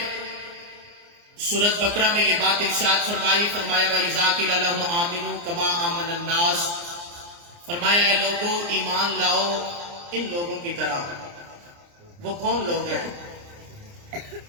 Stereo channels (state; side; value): late; left; 29 ms